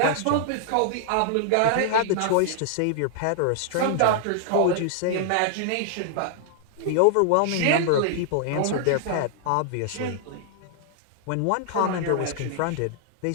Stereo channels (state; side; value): different; both; correlation -0.01